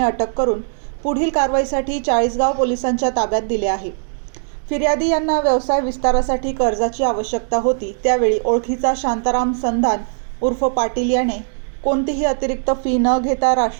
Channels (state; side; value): silent; left; digital silence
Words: अटक करून पुढील कारवाईसाठी चाळीसगाव पोलिसांच्या ताब्यात दिले आहे। फिर्यादी यांना व्यवसाय विस्तारासाठी कर्जाची आवश्यकता होती। त्यावेळी ओळखीचा शांताराम संधान उर्फ पाटील याने कोणतीही अतिरिक्त फी न घेता